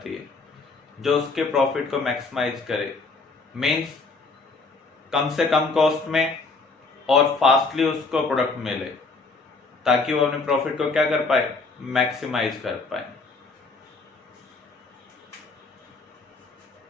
है जो उसके प्रॉफिट को मैक्सिमाइज करे, मींस कम से कम कॉस्ट में और फास्टली उसको प्रोडक्ट मिले, ताकि वो अपने प्रॉफिट को क्या कर पाए? मैक्सिमाइज कर पाए।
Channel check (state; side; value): quieter; right; 3.8 dB